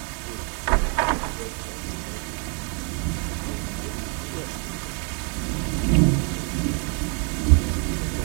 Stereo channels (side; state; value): left; quieter; 35.6 dB